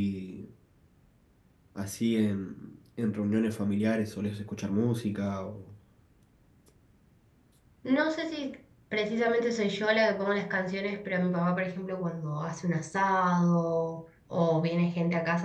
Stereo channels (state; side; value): identical; both; correlation 1.00